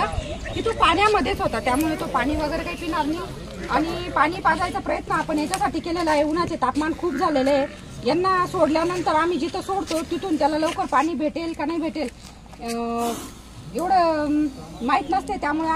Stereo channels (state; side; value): identical; both; correlation 1.00